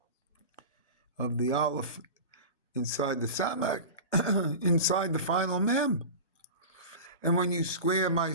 of the Aleph inside the Samak, inside the final Mem. And when you square my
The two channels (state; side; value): inverted; both; correlation -0.31